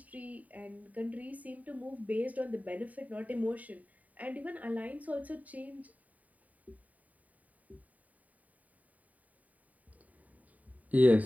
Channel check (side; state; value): left; late; 0.072 ms